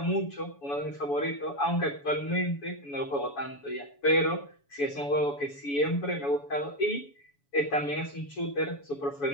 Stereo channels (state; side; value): late; right; 7.1 ms